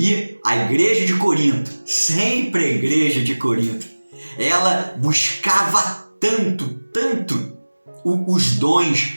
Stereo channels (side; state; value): both; inverted; correlation -1.00